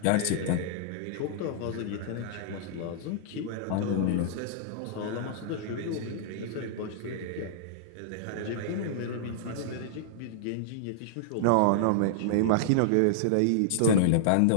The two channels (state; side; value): different; both; correlation -0.01